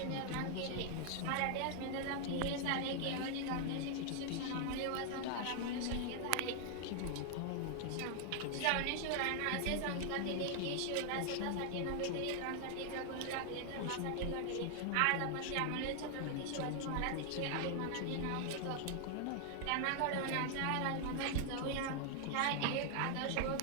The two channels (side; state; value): both; different; correlation 0.00